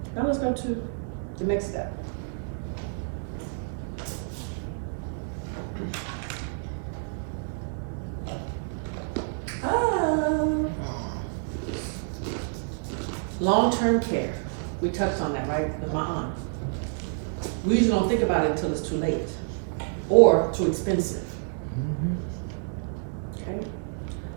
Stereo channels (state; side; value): silent; left; 59 dB below the other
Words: Now let's go to the next step. Long-term care. We touched on that, right? With my aunt. We usually don't think about it until it's too late or too expensive. Okay?